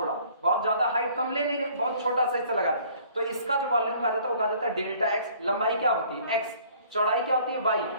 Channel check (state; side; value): inverted; both; correlation -0.56